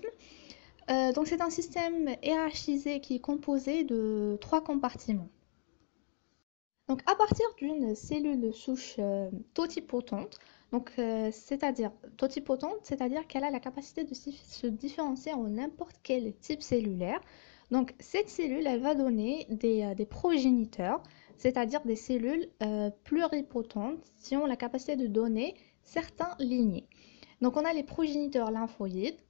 Donc c'est un système hiérarchisé qui est composé de 3 compartiments. Donc, à partir d'une cellule souche totipotente, c'est-à-dire totipotente, c'est-à-dire qu'elle a la capacité de se différencier en n'importe quel type cellulaire. Donc, cette cellule, elle va donner des progéniteurs, c'est-à-dire des cellules pluripotentes qui ont la capacité de donner certains lignées. Donc, on a les progéniteurs lymphoïdes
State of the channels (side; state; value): right; silent; digital silence